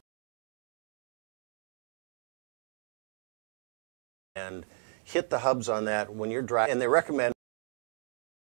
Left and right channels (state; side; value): silent; left; digital silence